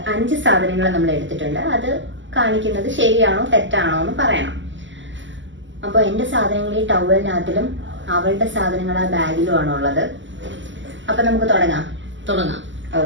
5 സാധനങ്ങൾ നമ്മൾ എടുത്തിട്ടുണ്ട്. അത് കാണിക്കുന്നത് ശരിയാണോ തെറ്റാണോ എന്ന് പറയണം. അപ്പൊ എന്റെ സാധനങ്ങൾ ഈ ടവലിനകത്തിലും അവളുടെ സാധനങ്ങൾ ആ ബാഗിലും ആണ് ഉള്ളത്. അപ്പൊ നമുക്ക് തുടങ്ങാം.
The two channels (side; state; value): left; late; 0.54 ms